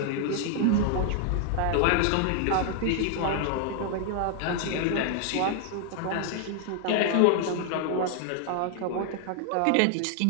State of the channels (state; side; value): different; both; correlation 0.00